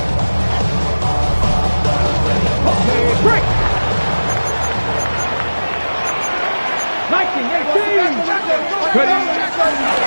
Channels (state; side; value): inverted; both; correlation -1.00